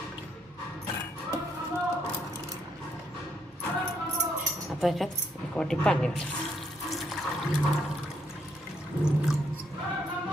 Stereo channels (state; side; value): normal; both; correlation 0.74